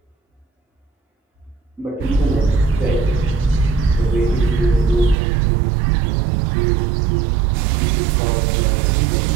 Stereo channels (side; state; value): left; drops out; at 5.2 s